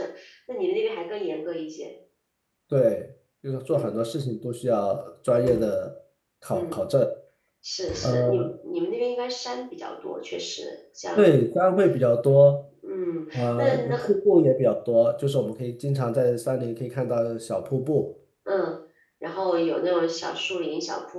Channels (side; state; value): both; identical; correlation 1.00